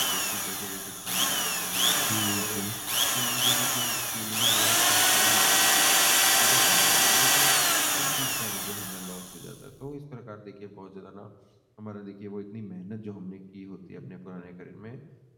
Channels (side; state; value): both; identical; correlation 1.00